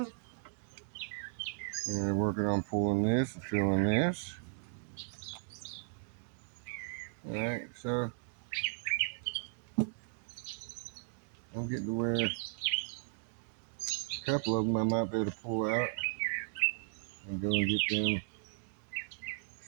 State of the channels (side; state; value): left; silent; digital silence